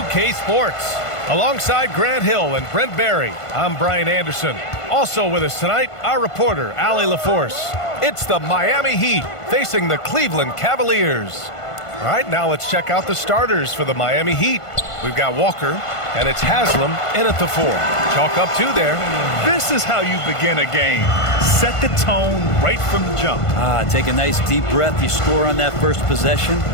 Sports. Alongside Grant Hill and Brent Barry, I'm Brian Anderson. Also with us tonight, our reporter, Allie LaForce. It's the Miami Heat facing the Cleveland Cavaliers. All right, now let's check out the starters for the Miami Heat. We've got Walker, and it's Haslam in at the 4. Chalk up 2 there. This is how you begin a game. Set the tone right from the jump. Take a nice deep breath. You score on that first possession.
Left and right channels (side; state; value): right; late; 1.5 ms